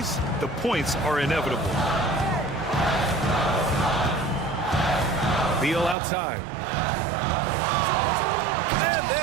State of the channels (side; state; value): left; drops out; at 6.0 s